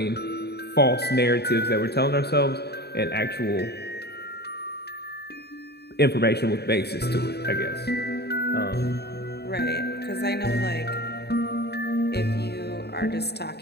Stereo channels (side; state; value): right; late; 0.48 ms